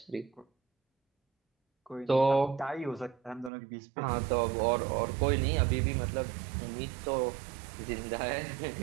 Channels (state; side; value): drops out; left; at 3.5 s